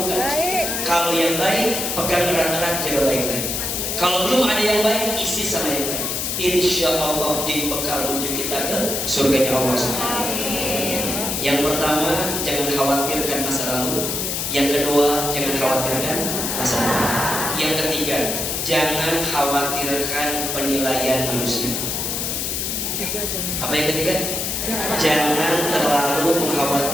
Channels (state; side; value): noise; left; hiss, 1 dB below the sound